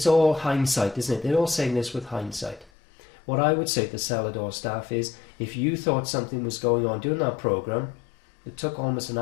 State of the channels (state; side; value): drops out; right; at 2.7 s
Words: all hindsight, isn't it? They're all saying this with hindsight. What I would say to the Celador staff is, if you thought something was going on during that programme, it took almost an